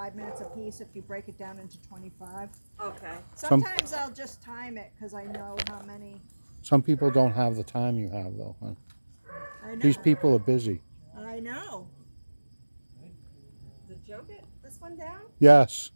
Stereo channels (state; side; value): inverted; both; correlation -1.00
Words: minutes a piece if you break it down into 25. Okay. Sometimes I'll just time it because I know how many. Some people don't have the time you have, though, huh? I know. These people are busy. I know. Did Joe get this one down? Yes.